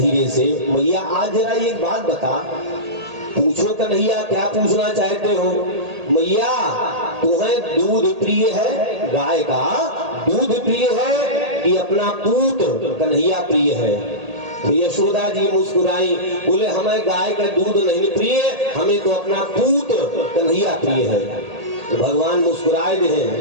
से, मैया आज जरा एक बात बता। पूछो कन्हैया, क्या पूछना चाहते हो? मैया तुम्हें दूध प्रिय है, गाय का दूध प्रिय है कि अपना पूत कन्हैया प्रिय है? तो यशोदा जी मुस्कुराई, बोले हमें गाय का दूध नहीं प्रिय, हमें तो अपना पूत कन्हैया प्रिय है। तो भगवान मुस्कुराए दे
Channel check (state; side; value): late; left; 1.8 ms